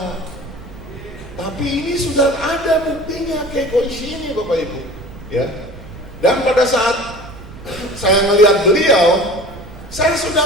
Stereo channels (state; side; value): noise; right; rumble, 16 dB below the sound